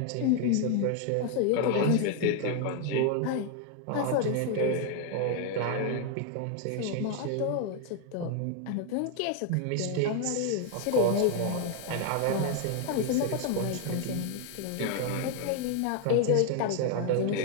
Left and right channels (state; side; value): different; both; correlation 0.01